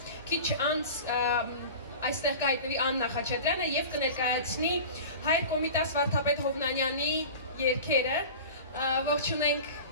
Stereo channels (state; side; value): inverted; both; correlation -0.36